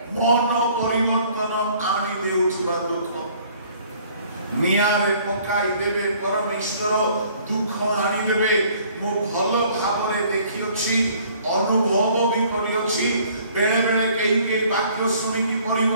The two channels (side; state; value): both; inverted; correlation -0.57